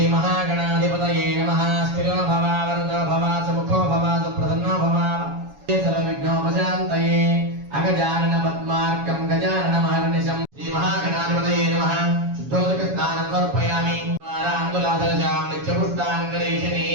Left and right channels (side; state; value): left; late; 7.2 ms